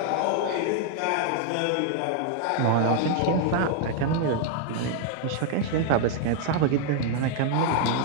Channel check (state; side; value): different; both; correlation 0.00